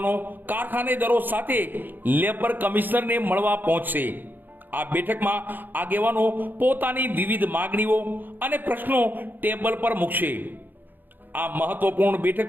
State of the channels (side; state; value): left; late; 0.090 ms